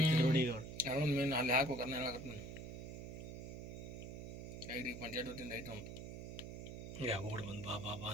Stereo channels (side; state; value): right; noise; hum, 8 dB below the sound